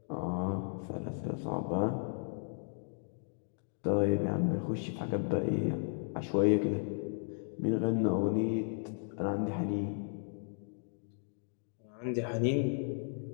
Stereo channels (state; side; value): silent; right; digital silence